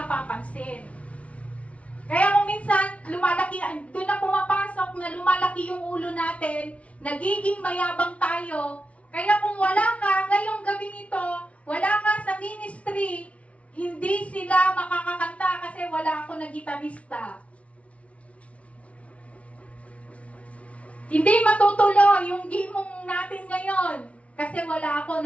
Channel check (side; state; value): right; late; 0.064 ms